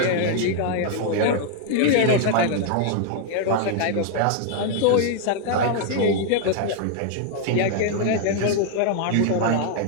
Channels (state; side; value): different; both; correlation 0.00